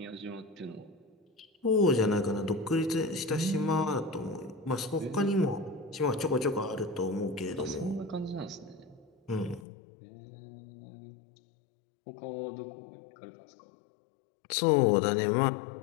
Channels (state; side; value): drops out; right; at 9.7 s